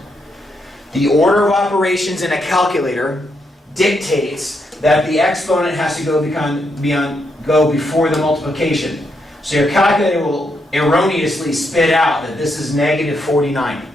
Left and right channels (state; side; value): normal; both; correlation 0.79